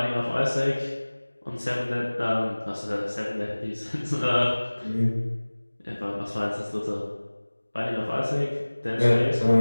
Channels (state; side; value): inverted; both; correlation -1.00